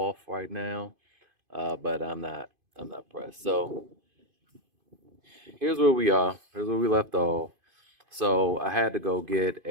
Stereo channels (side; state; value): left; late; 2.5 ms